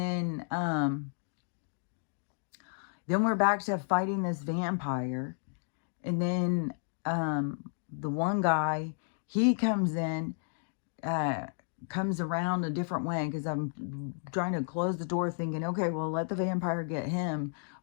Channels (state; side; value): silent; right; digital silence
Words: we're back to fighting this vampire. And then the one guy, he comes in, comes around a different way because I'm trying to close the door thinking, okay, well, let the vampire get him